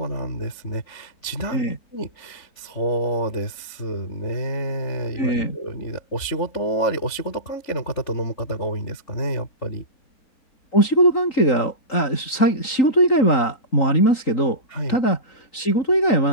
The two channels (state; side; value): late; right; 3.9 ms